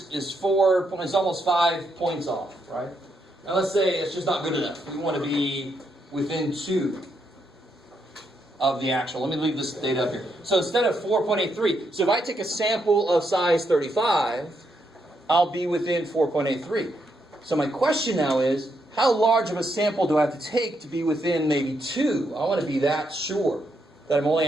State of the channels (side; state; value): both; normal; correlation 0.79